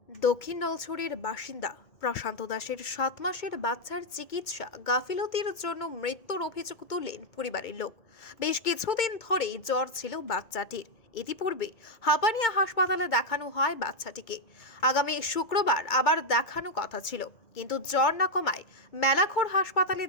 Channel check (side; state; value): right; late; 2.2 ms